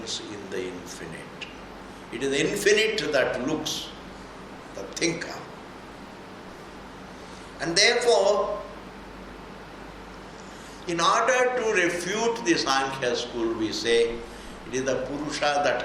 in the infinite. It is the infinite that looks, the thinker. And therefore, in order to refute the Sankhya school, we say it is the Purusha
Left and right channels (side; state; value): both; identical; correlation 1.00